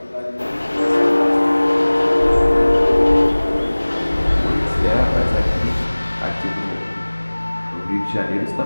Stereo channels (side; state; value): both; inverted; correlation -1.00